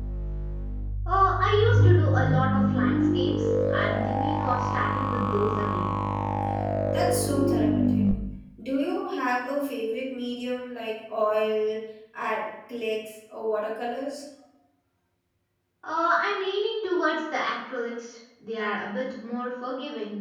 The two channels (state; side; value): identical; both; correlation 1.00